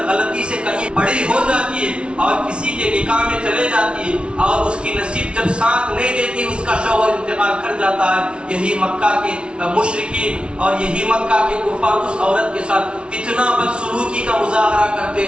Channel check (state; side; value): late; left; 0.058 ms